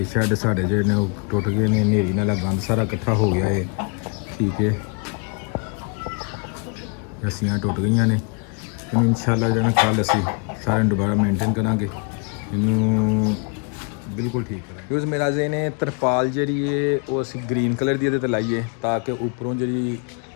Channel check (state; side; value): quieter; right; 36.6 dB